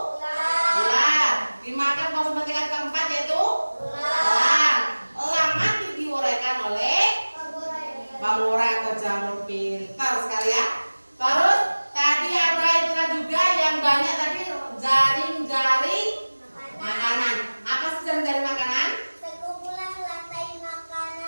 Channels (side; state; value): both; inverted; correlation -1.00